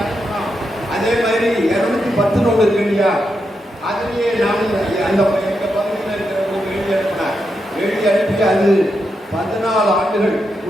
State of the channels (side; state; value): both; normal; correlation 0.85